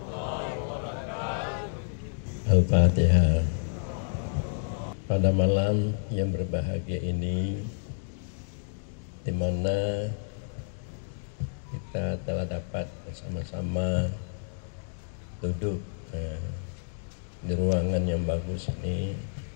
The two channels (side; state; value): right; silent; digital silence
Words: wabarakatuh. Al-Fatihah. Pada malam yang berbahagia ini, di mana kita telah dapat bersama-sama duduk di ruangan yang bagus ini